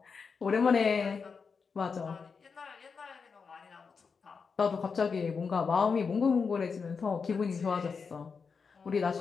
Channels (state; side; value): quieter; right; 5.4 dB